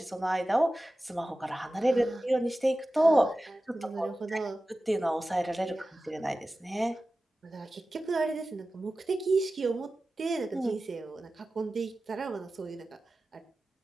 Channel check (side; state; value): both; normal; correlation 0.95